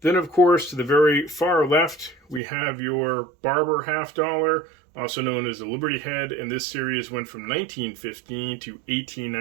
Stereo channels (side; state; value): left; drops out; at 2.4 s